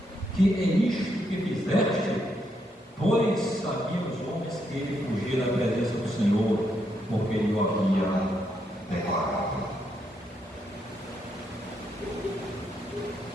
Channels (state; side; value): normal; both; correlation 0.78